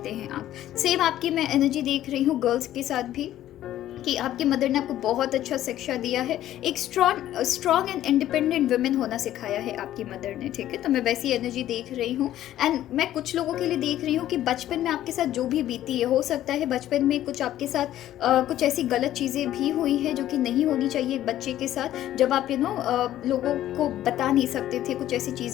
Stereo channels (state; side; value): quieter; right; 12.9 dB